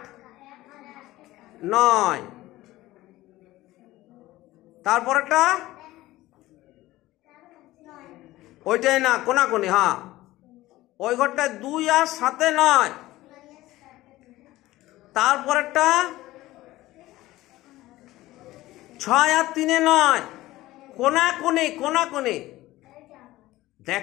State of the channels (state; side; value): quieter; right; 17.1 dB